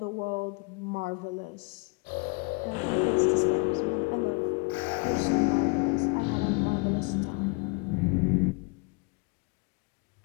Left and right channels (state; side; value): quieter; right; 33.0 dB